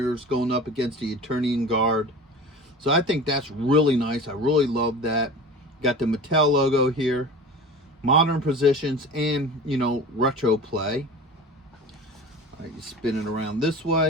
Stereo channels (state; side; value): normal; both; correlation 0.36